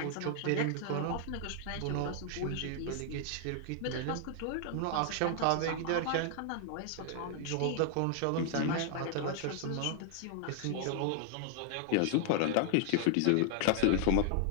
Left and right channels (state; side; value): different; both; correlation 0.00